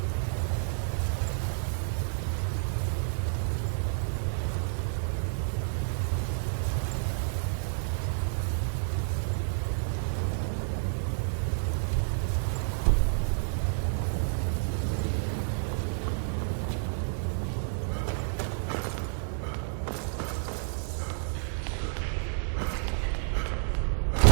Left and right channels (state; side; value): silent; left; 58 dB below the other